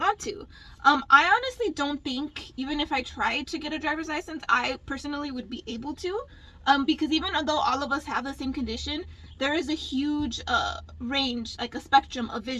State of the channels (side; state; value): both; identical; correlation 1.00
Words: to. I honestly don't think, even if I tried to get a driver's license, I personally would be able to. Because even though all of us have the same condition, there is a huge range, like a spectrum of